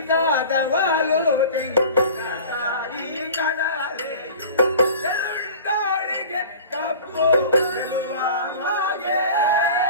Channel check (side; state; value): both; inverted; correlation -0.40